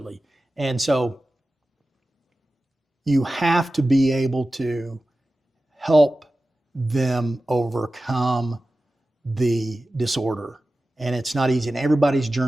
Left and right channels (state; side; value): normal; both; correlation 0.95